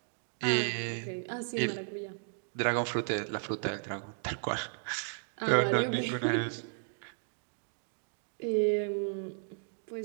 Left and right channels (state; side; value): silent; left; digital silence